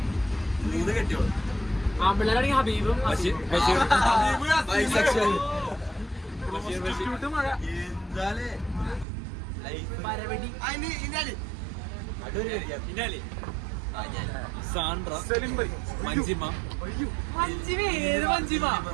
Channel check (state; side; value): drops out; left; at 9.1 s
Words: 3 കെട്ടിയോളൂ. ഹബീബും സാൻഡ്ര മഞ്ജിമ